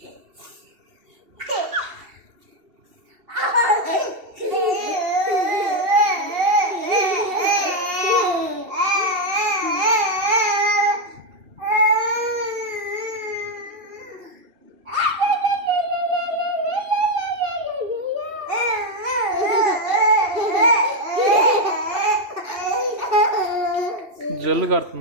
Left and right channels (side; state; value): left; late; 2.7 ms